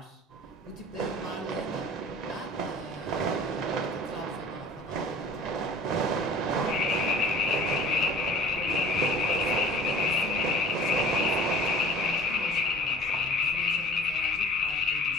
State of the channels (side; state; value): both; normal; correlation 0.45